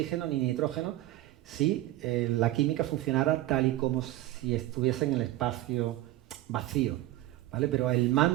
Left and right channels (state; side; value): quieter; left; 15.8 dB